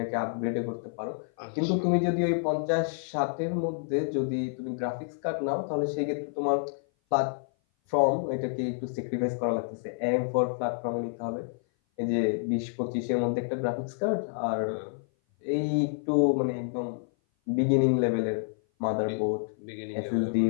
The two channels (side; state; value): right; silent; 56 dB below the other